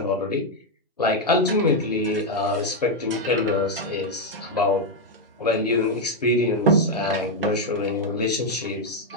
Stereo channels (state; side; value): normal; both; correlation 0.01